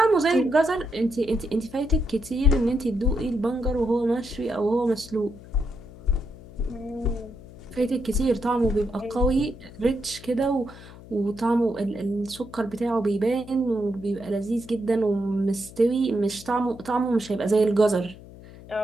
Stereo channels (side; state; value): left; noise; hum, 18 dB below the sound